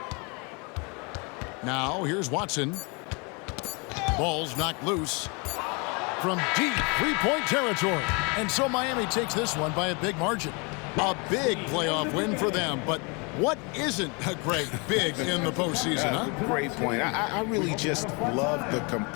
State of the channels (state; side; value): quieter; right; 31.4 dB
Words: Now, here's Watson. Ball's knocked loose. from deep three-point territory. And so Miami takes this one by a big margin. A big playoff win for them, but what isn't a great big in the postseason, huh? Great point. I really just love the